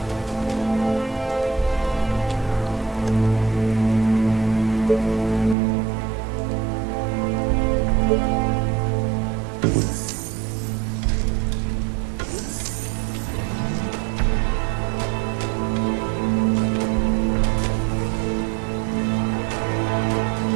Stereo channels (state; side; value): drops out; left; at 5.6 s